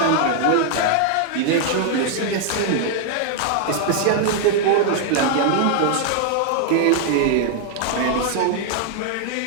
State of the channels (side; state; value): both; different; correlation 0.00